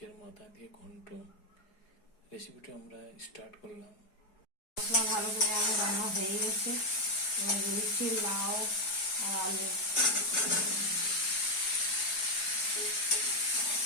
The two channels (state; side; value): late; right; 4.8 ms